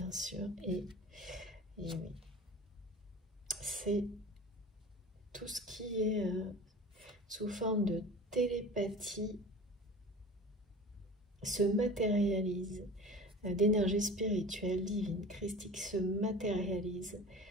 sûr. Et oui. C'est tout ce qui est sous forme de télépathie se matérialise, d'énergie spirituelle, divine, christique, se matérialise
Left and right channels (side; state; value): both; normal; correlation 0.37